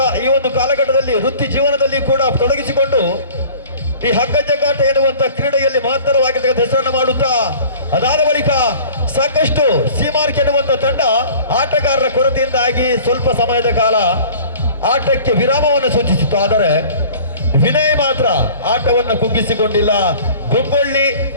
ಈ ಒಂದು ಕಾಲಘಟ್ಟದಲ್ಲಿ ವೃತ್ತಿ ಜೀವನದಲ್ಲಿ ಕೂಡ ತೊಡಗಿಸಿಕೊಂಡು ಈ ಹಗ್ಗ ಜಗ್ಗಾಟ ಎನ್ನುವಂತ ಕ್ರೀಡೆಯಲ್ಲಿ ಮಹತ್ತರವಾಗಿರ್ತಕ್ಕಂಥ ಹೆಸರನ್ನು ಮಾಡುತ್ತಾ ಅದಾದ ಬಳಿಕ ಸಾಕಷ್ಟು ಸೀಮಾರ್ಕ್ ಎನ್ನುವಂತ ತಂಡ ಆಟಗಾರರ ಕೊರತೆಯಿಂದಾಗಿ ಸ್ವಲ್ಪ ಸಮಯದ ಕಾಲ ಆಟಕ್ಕೆ ವಿರಾಮವನ್ನು ಸೂಚಿಸಿತ್ತು. ಆದರೆ ವಿನಯ್ ಮಾತ್ರ ಆಟವನ್ನು ಕುಗ್ಗಿಸಿಕೊಂಡಿಲ್ಲ. ಗುಬ್ಬಳ್ಳಿ,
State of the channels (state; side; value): inverted; both; correlation -0.46